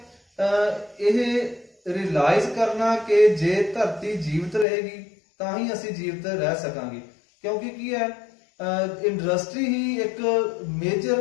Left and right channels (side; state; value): right; drops out; at 4.7 s